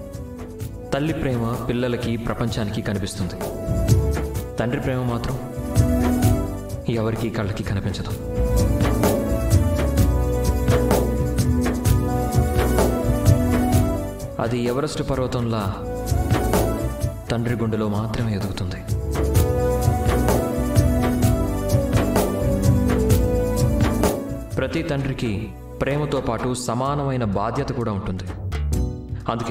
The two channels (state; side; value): identical; both; correlation 1.00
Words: తల్లి ప్రేమ పిల్లలకి ప్రపంచానికి కనిపిస్తుంది. తండ్రి ప్రేమ మాత్రం ఎవరికి కళ్ళకి కనిపించదు. అది ఎవరెస్ట్ పర్వతంలా తండ్రి గుండెలో మాత్రమే ఎదుగుతుంది. ప్రతి తండ్రికి ప్రేమతో పాటు సమానమైన బాధ్యత కూడా ఉంటుంది.